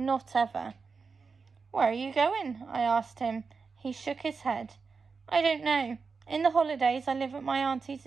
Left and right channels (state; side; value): quieter; left; 4.9 dB